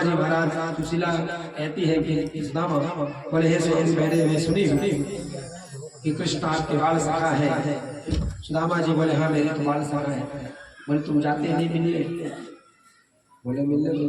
जी महाराज सुशीला कहती है कि सुदामा बोले हे स्वामी मैंने मैं सुनी कि कृष्ण आपके बाल सखा है। सुदामा जी बोले हाँ मेरे तो बाल सखा है। बोले तुम जाते नहीं मिलने? बोले मिलने तो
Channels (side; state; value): both; identical; correlation 1.00